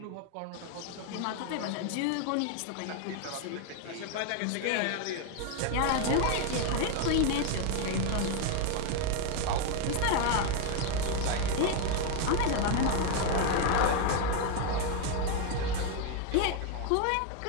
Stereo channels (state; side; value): different; both; correlation 0.01